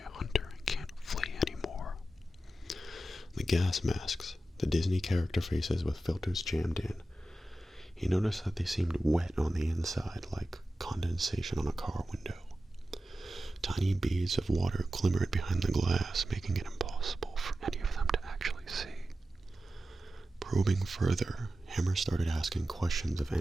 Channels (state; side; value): normal; both; correlation 0.93